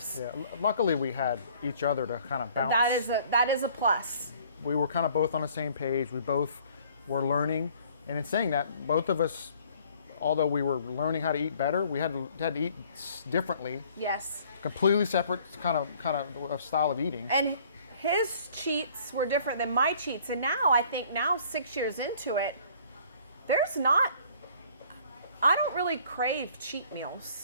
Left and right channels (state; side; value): inverted; both; correlation -0.56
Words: Yeah. Luckily, we had each other to kind of bounce. That is a plus. We were kind of both on the same page. We both were learning, and in saying that, both of us, although we were learning how to eat better, we had to eat differently. Yes. Completely separate kind of style of eating. And his cheats were different than my cheats, and I think 6 years into it, I don't really crave cheat